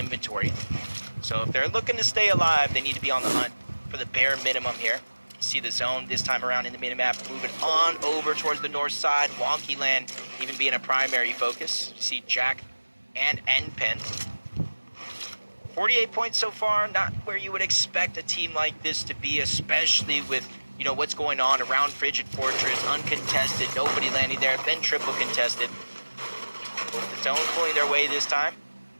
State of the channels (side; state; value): both; inverted; correlation -1.00